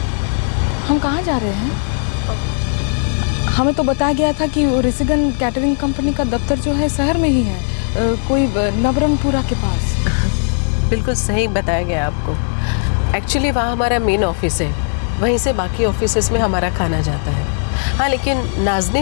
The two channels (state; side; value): silent; right; digital silence